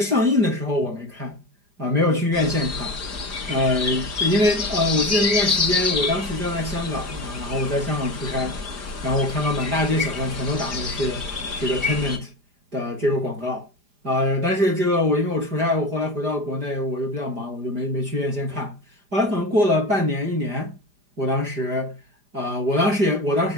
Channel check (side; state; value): left; late; 4.9 ms